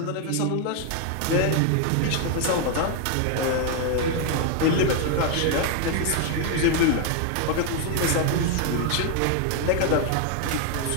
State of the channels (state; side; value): different; both; correlation 0.00